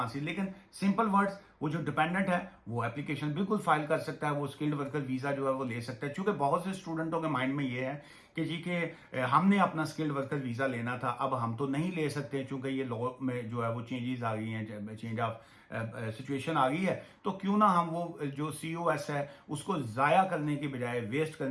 लेकिन सिंपल वर्ड्स, वो जो डिपेंडेंट है वो एप्लीकेशन बिल्कुल फाइल कर सकता है, वो स्किल्ड वर्कर वीजा जो है वो ले सकता है। क्योंकि बहुत से स्टूडेंटों के माइंड में ये है कि जी के हमने अपना स्किल्ड वर्कर वीजा लेना था, अब हम तो नहीं ले सकते क्योंकि ये लॉ में जो है वो चेंजेस आ गई हैं, चेंज ऑफ सिचुएशन आ गई है, तो क्यों ना हम वो जो COS है उसको जाया करने की बजाय, वेस्ट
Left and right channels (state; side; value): identical; both; correlation 1.00